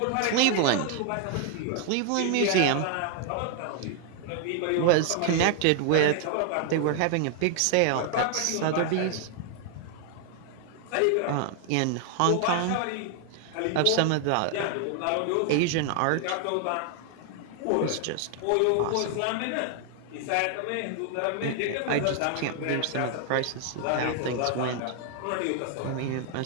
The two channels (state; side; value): different; both; correlation 0.00